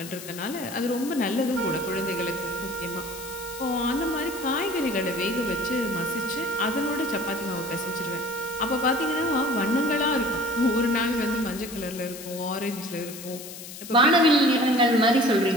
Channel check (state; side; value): noise; left; hiss, 13 dB below the sound